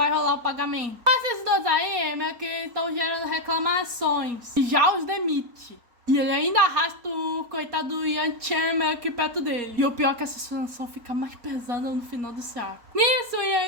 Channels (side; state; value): left; late; 4.2 ms